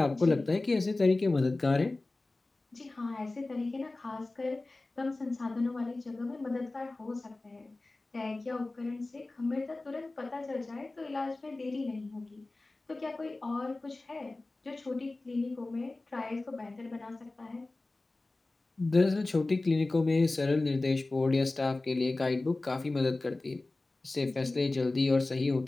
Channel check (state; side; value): quieter; right; 3.1 dB